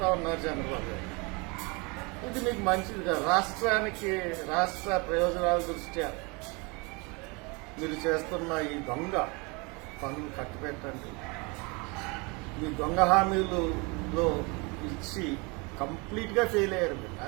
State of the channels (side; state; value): left; quieter; 28.9 dB